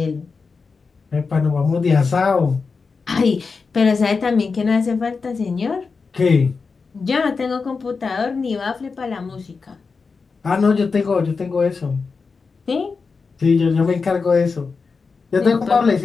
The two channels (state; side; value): quieter; right; 4.7 dB